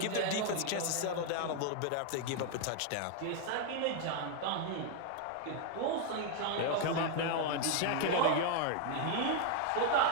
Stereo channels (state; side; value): different; both; correlation 0.00